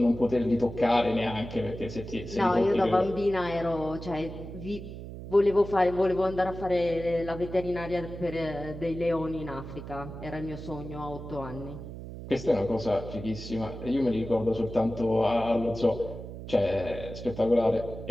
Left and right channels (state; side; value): noise; right; hum, 11 dB below the sound